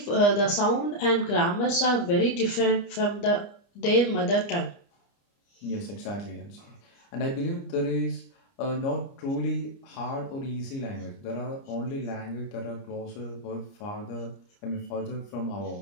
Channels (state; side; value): late; right; 29 ms